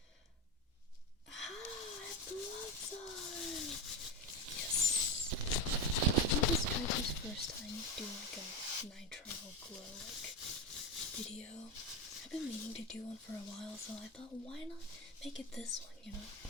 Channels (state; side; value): normal; both; correlation 0.16